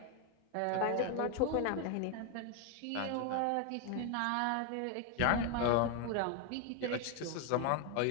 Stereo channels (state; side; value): different; both; correlation 0.01